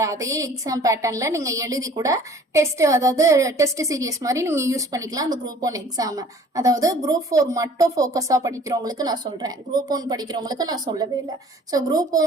அதே எக்ஸாம் பேட்டர்ன்ல நீங்க எழுதி கூட டெஸ்ட், அதாவது டெஸ்ட் சீரியஸ் மாதிரி நீங்க யூஸ் பண்ணிக்கலாம் அந்த குரூப் 1 எக்ஸாம். அதாவது குரூப் 4 மட்டும் ஃபோக்கஸா படிக்கிறவங்களுக்கு நான் சொல்றேன், குரூப் 1 படிக்கிறவங்களுக்கு நான் சொல்லவே இல்லை. ஸோ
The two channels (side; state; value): both; normal; correlation 0.51